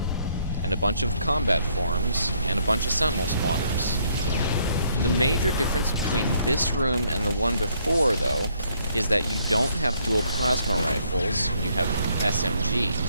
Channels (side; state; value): both; inverted; correlation -0.68